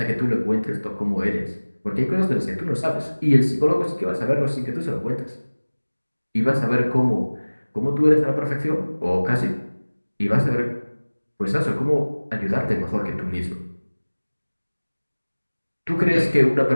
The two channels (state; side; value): inverted; both; correlation -1.00